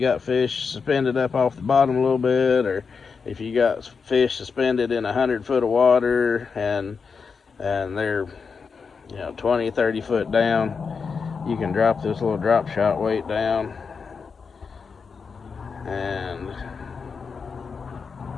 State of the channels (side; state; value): right; quieter; 5.4 dB